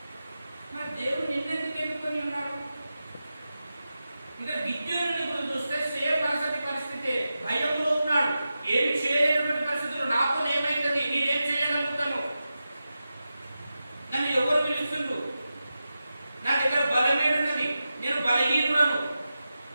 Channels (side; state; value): both; inverted; correlation -0.91